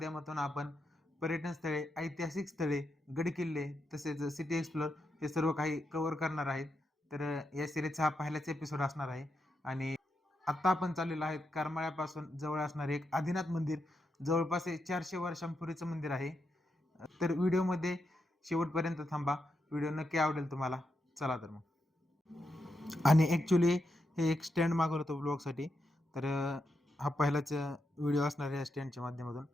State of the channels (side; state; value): both; normal; correlation 0.84